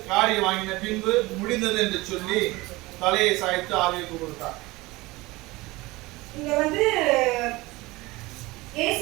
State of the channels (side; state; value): left; quieter; 21.3 dB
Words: காடியை வாங்கின பின்பு முடிந்தது என்று சொல்லி தலையை சாய்த்து ஆவிக்கு கொடுத்தார். இங்க